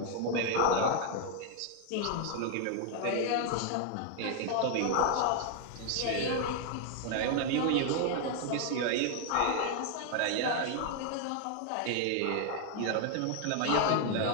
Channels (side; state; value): both; different; correlation 0.00